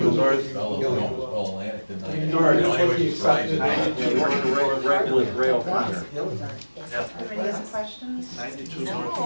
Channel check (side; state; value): both; inverted; correlation -1.00